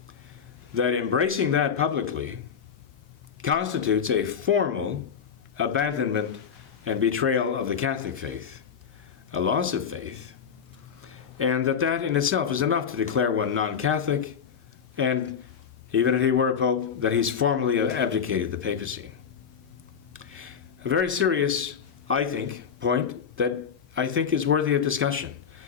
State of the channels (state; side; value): quieter; right; 7.1 dB